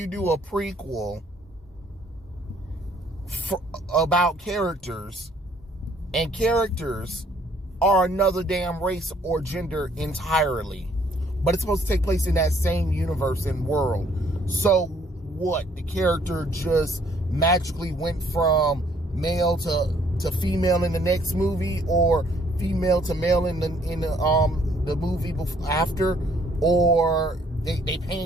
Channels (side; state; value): both; normal; correlation 0.63